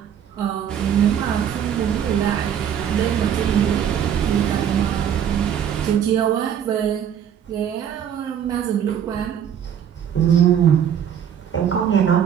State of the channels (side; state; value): left; quieter; 9.0 dB